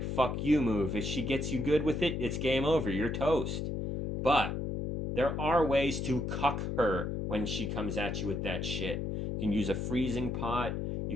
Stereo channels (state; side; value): noise; left; hum, 2 dB below the sound